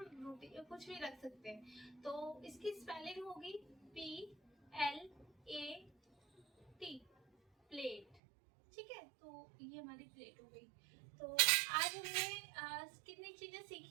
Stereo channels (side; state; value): left; drops out; at 8.2 s